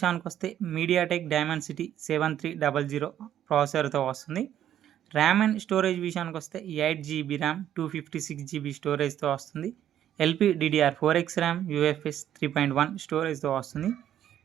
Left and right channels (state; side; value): quieter; left; 10.9 dB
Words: వస్తే మీడియాటెక్ డైమెన్సిటీ 7300 ప్రాసెసర్తో వస్తుంది. ర్యామ్ అండ్ స్టోరేజ్ విషయానికి వస్తే 8GB ర్యామ్, 256GB స్టోరేజ్తో వస్తుంది. LPDDR4X ర్యామ్, UFS 3.1 స్టోరేజ్తో వస్తుంది.